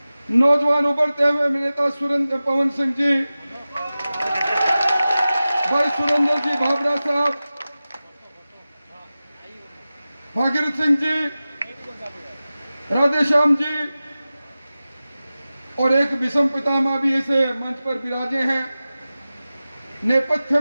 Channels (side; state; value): both; inverted; correlation -0.96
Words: नौजवान उभरते हुए नेता सुरेंद्र पवन सिंह जी, भाई सुरेंद्र जी भाबरा साहब, भागीरथ सिंह जी, राधेश्याम जी और एक विषम पितामह भी इस मंच पर विराजे हैं। नेपथ्य